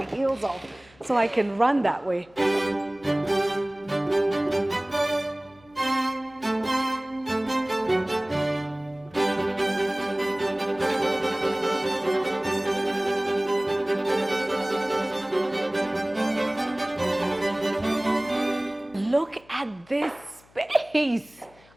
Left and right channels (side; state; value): left; noise; hum, 28 dB below the sound